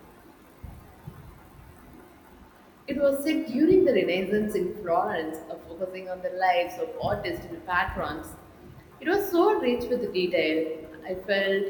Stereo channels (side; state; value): both; identical; correlation 1.00